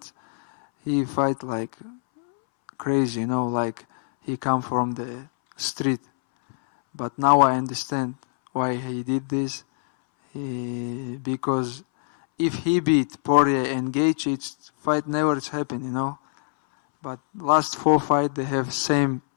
He fight like crazy, like he come from the street. But now I understand why he did this. Because if he beat Poirier and Gaethje, it's fight never happen, But last 4 fights they have same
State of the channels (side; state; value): right; silent; 62 dB below the other